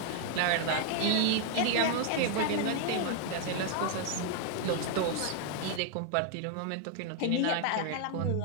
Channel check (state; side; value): different; both; correlation 0.00